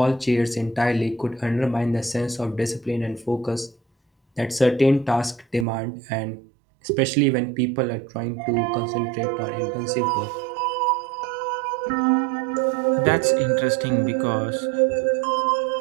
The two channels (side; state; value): left; drops out; at 5.7 s